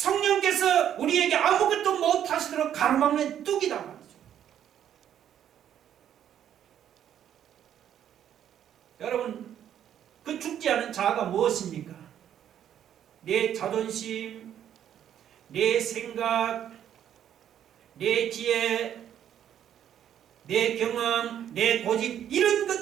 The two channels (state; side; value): quieter; left; 10.1 dB